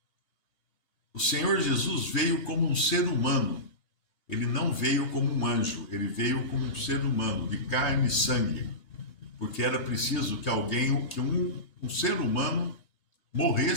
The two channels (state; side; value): late; right; 2.8 ms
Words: o Senhor Jesus veio como um ser humano. Ele não veio como um anjo, ele veio como um ser humano, de carne e sangue. Porque era preciso que um ser humano